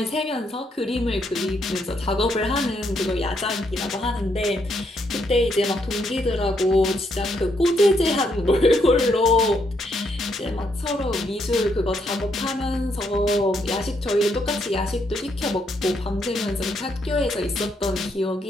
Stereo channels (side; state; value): both; normal; correlation 0.75